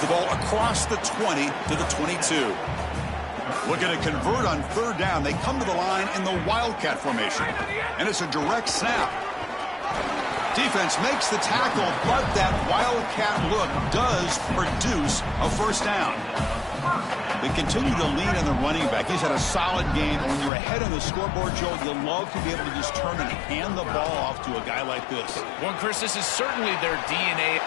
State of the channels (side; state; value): right; drops out; at 20.5 s